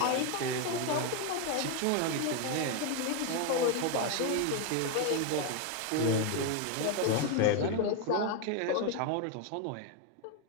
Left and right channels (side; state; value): both; different; correlation 0.01